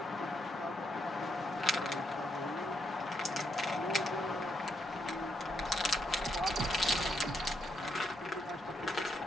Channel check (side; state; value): both; normal; correlation 0.78